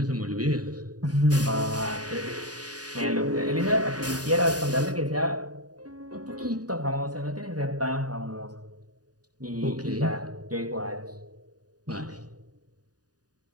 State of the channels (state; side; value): late; left; 0.68 ms